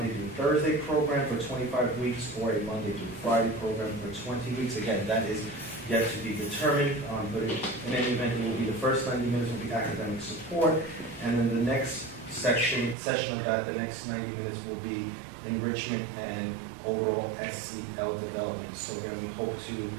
through Thursday program for 25 weeks or a Monday through Friday program for 20 weeks. Again, that is yet to be determined, but in any event, it will be the first 90 minutes will be academic support, and then the next session of that, the next 90 minutes will be enrichment and overall SEL development. So again, we hope to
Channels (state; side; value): drops out; left; at 13.0 s